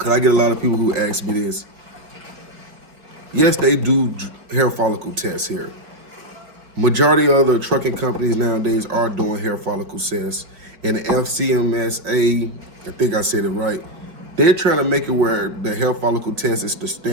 I get a lot of people who ask me this. Yes, they do hair follicle tests here. Majority of the trucking companies nowadays are doing hair follicle tests. And the FCMSA, I think I said it right, they're trying to make it where the hair follicle test is the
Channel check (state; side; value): late; left; 4.8 ms